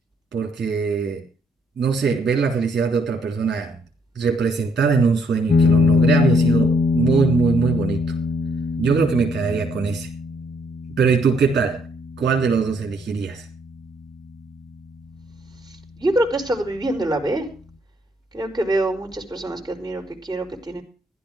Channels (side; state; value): both; normal; correlation 0.70